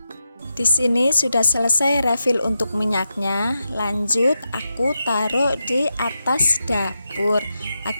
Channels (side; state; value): both; inverted; correlation -0.88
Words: Di sini sudah selesai refill untuk minyaknya. Lanjut, aku taruh di atas dapur